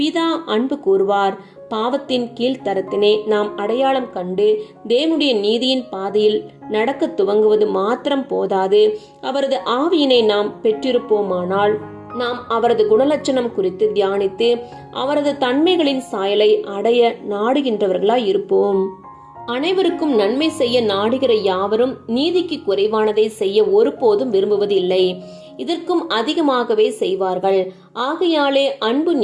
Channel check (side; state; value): both; identical; correlation 1.00